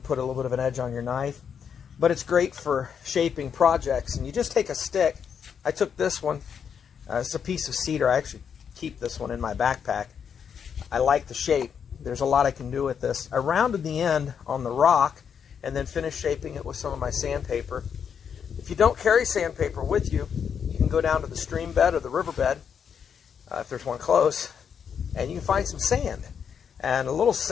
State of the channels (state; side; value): quieter; right; 7.4 dB